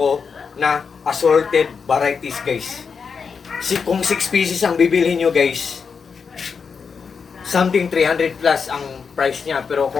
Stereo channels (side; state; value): right; quieter; 5.8 dB